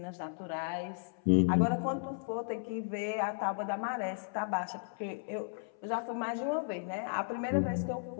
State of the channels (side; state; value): right; silent; 54 dB below the other